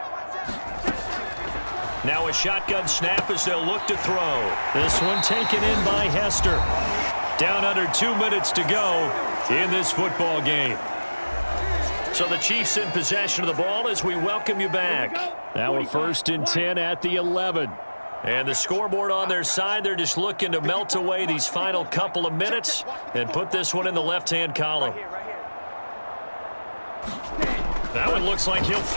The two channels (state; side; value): inverted; both; correlation -1.00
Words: Now a shotgun snap as they'll look to throw. This one taken in by Hester. Down under 2 minutes to go in this football game. So the Chiefs in possession of the ball as we welcome you back. Now a 1st and 10 at the 11. And the scoreboard on their side, they're just looking to melt away these final couple of minutes and put this one in the left-hand column. That one looks like he'll